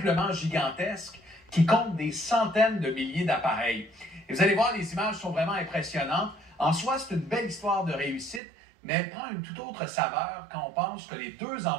gigantesque qui compte des centaines de milliers d'appareils. Et vous allez voir, les images sont vraiment impressionnantes. En soi, c'est une belle histoire de réussite, mais elle prend une toute autre saveur quand on pense que les deux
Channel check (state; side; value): drops out; left; at 8.4 s